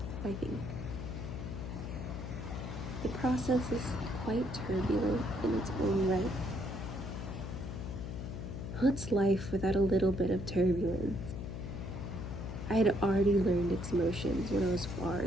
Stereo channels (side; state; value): left; noise; hum, 6 dB below the sound